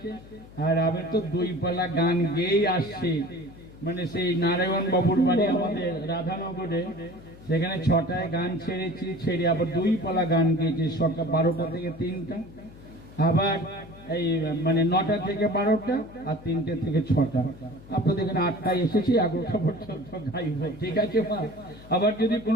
আর আমি তো 2 পালা গান গেয়েই আসছি। মানে সেই নারায়ণ বাবুর বাড়ি আমাদের রাধানগরে, সেখানে 6টায় গান ছেড়েছি, ছেড়ে আবার 2 পালা গান গেয়েছি, সকাল 12টা থেকে 3টা, আবার এই মানে 9টা থেকে 12টা, আর 3টে থেকে 6টা। আপনাদের এখানে 8টায় এসেছি, 11টা পর্যন্ত গাইব, ঠিক আছে মা? আবার যদি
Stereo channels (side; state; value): left; noise; hum, 19 dB below the sound